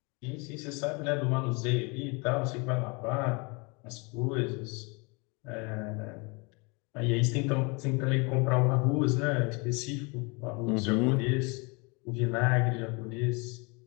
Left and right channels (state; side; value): quieter; right; 30.3 dB